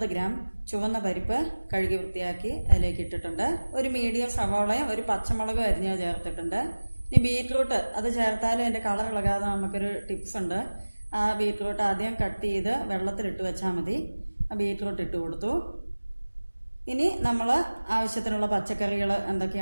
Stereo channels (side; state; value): both; inverted; correlation -1.00